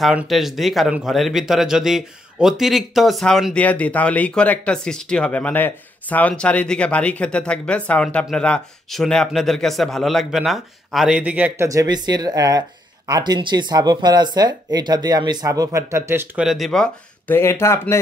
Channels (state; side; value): normal; both; correlation 0.76